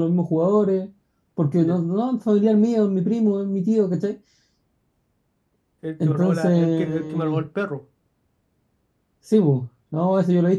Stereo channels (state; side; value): identical; both; correlation 1.00